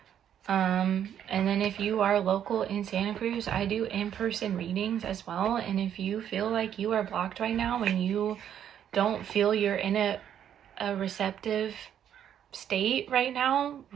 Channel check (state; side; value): quieter; left; 9.7 dB